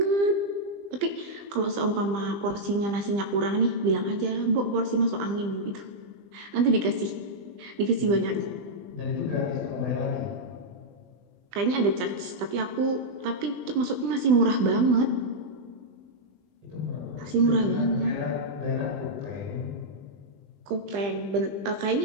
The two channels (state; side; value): late; left; 20 ms